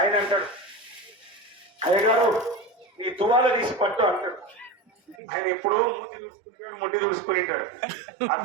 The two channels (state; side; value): drops out; left; at 5.2 s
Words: ఆయన అంటాడు, అయ్యగారు ఈ తువాల తీసి పట్టు అంటాడు. ఆయన ఎప్పుడో ముట్టి చూసుకుంటాడు. ఆ